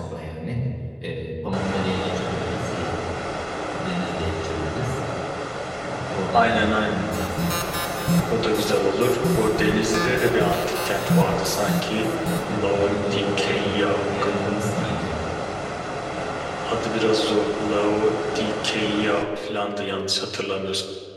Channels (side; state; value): both; identical; correlation 1.00